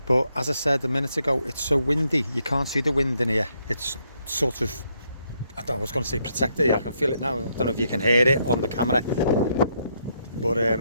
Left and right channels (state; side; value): inverted; both; correlation -0.76